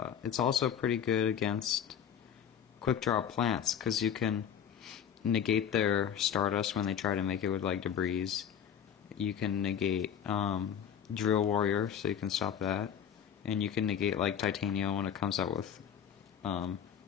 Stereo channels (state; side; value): quieter; right; 8.5 dB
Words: It's also pretty good against quick draw plants, because you can negate their Stardust when they try to make it with like debris. You can negate Drill Warrior, so you can stop that, and you can negate like Titania when it comes out with Lone